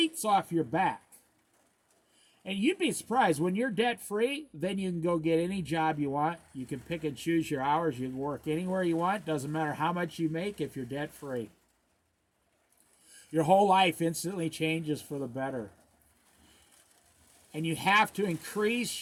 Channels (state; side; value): identical; both; correlation 1.00